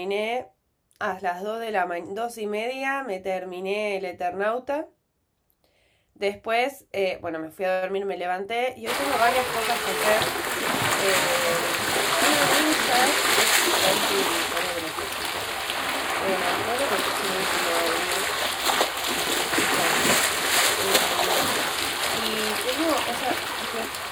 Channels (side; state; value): both; identical; correlation 1.00